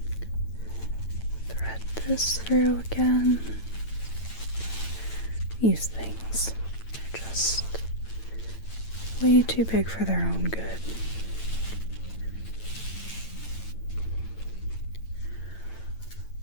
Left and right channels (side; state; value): right; late; 9.0 ms